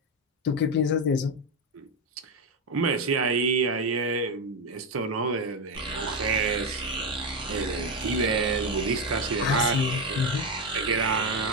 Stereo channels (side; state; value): both; normal; correlation 0.10